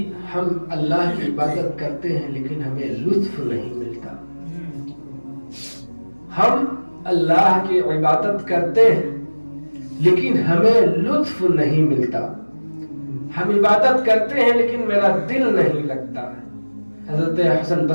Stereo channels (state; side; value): inverted; both; correlation -1.00